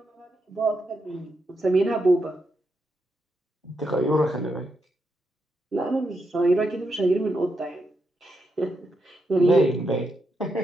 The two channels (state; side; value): normal; both; correlation 0.83